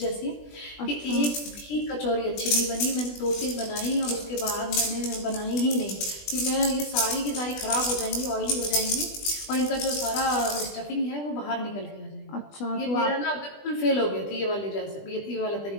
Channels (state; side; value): late; right; 20 ms